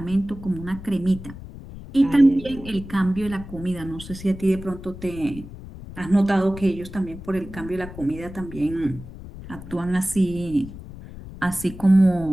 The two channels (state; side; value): noise; left; rumble, 14 dB below the sound